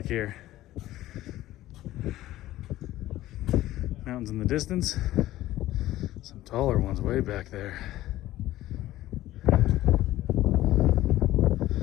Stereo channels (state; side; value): quieter; right; 15.3 dB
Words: here. Mountains in the distance. Some taller ones way back there.